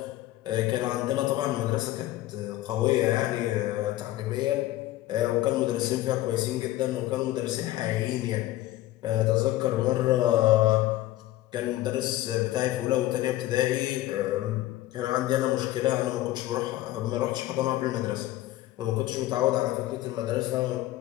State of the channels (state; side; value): quieter; right; 15.5 dB